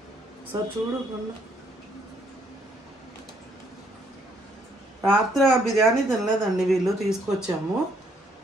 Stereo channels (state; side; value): normal; both; correlation 0.68